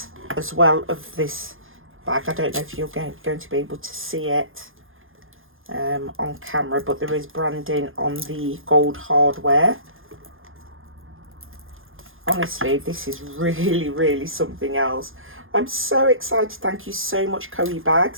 as well of this bag. I don't know if you're going to be able to see it on camera, but there is branding on the gold hardware. Honestly, this is really, really something else. I'm so excited. Thank you so much, Coee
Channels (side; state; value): left; late; 0.59 ms